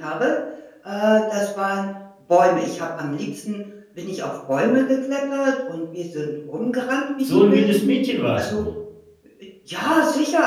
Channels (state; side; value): identical; both; correlation 1.00